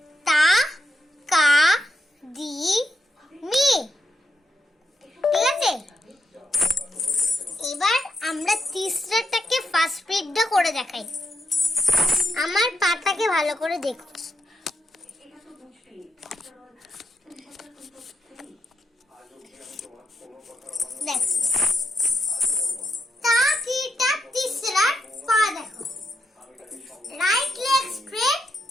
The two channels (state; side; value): normal; both; correlation 0.82